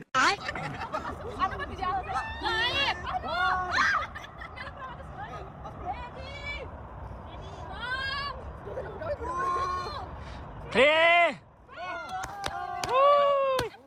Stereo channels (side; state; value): both; identical; correlation 1.00